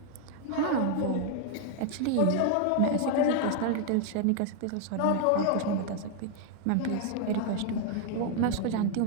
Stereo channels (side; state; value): both; different; correlation 0.00